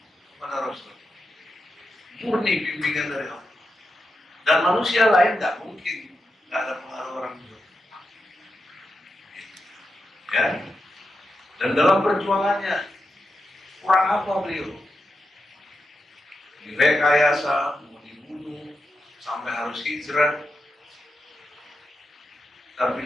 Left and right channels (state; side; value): normal; both; correlation 0.88